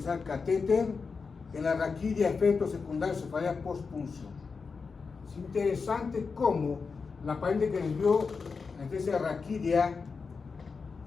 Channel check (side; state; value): right; quieter; 5.0 dB